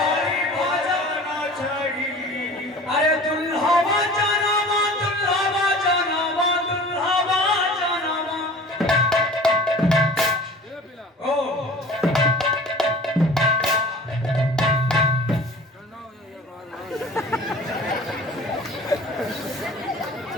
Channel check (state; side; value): normal; both; correlation 0.42